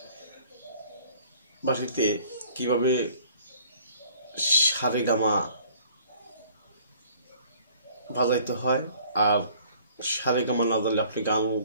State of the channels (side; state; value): both; inverted; correlation -0.55